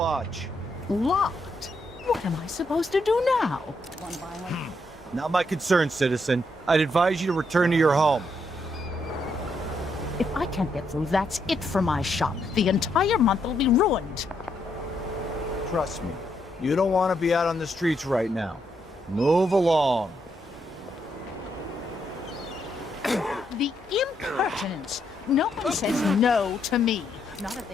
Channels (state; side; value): normal; both; correlation 0.77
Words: Locked? What am I supposed to do now? Not my concern, citizen. I'd advise you to return to your home. If I can't get through, that's it for my shop. The entire month will be ruined. Trust me, you don't want to be out on the streets right now. Move along. The impertinence! No one says no to me. Not if they